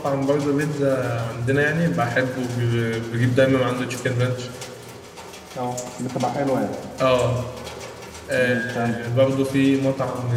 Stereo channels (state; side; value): identical; both; correlation 1.00